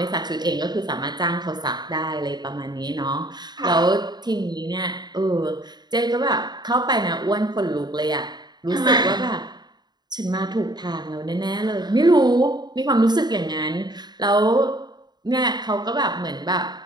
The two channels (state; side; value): late; left; 0.20 ms